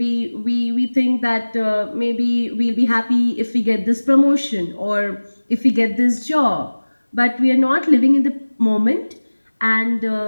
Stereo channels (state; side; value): inverted; both; correlation -1.00